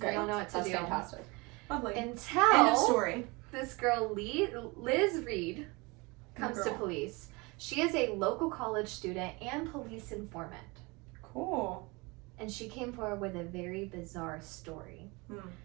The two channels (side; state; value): left; quieter; 26.2 dB